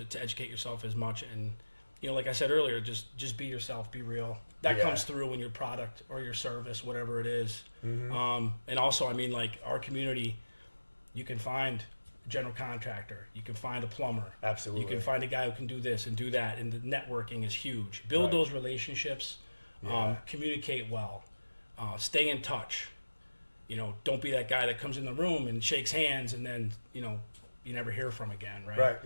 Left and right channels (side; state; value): both; inverted; correlation -1.00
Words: educate yourself as much. And, like I said earlier, just be yourself, be real. That Yeah. comes through in your product or your service, whatever it is. Mm-hmm. And also, I mean, like our community, you can find general contractor. You can find a plumber. Absolutely. You can find a guy who can do this and do that. And the networking is huge. Build those relationships. Communicate well. Stay in touch. Don't be that guy that comes in the room and shakes hands and then, you never hear from again, right? Right,